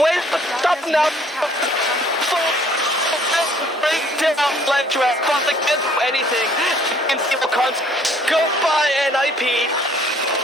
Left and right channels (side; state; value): both; normal; correlation 0.59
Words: stop him now. Break down Ledge Rat, but they can't do anything. TNC will goodbye NIP.